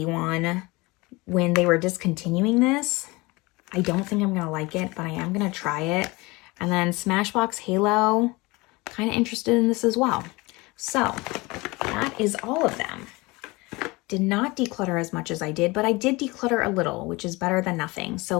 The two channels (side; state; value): right; quieter; 23.5 dB